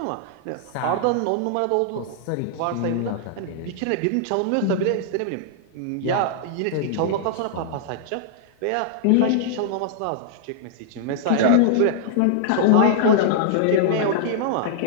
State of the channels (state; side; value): different; both; correlation -0.01